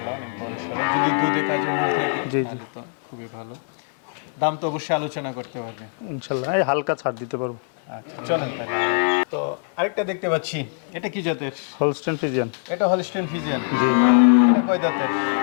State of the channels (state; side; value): silent; right; 57 dB below the other